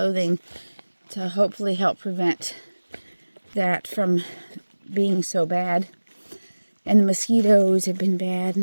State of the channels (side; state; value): both; inverted; correlation -1.00